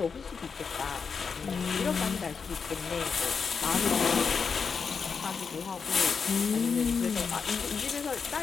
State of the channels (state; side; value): quieter; right; 5.7 dB